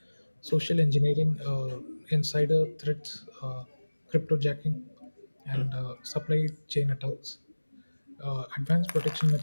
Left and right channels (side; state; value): both; inverted; correlation -1.00